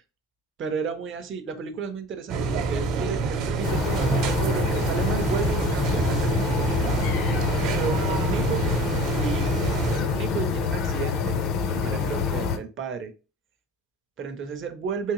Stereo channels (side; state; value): both; normal; correlation 0.41